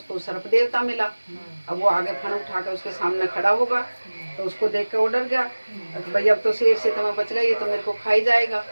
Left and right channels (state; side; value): inverted; both; correlation -1.00